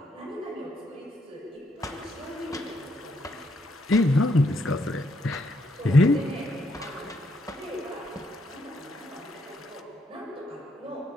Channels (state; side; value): normal; both; correlation 0.74